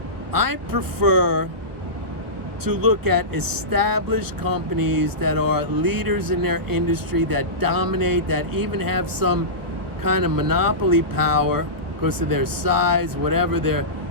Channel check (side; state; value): left; late; 1.3 ms